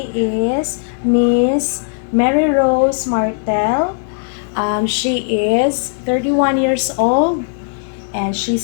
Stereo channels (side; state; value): right; silent; digital silence